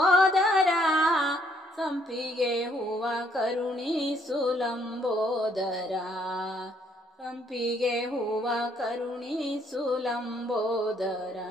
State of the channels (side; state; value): both; normal; correlation 0.68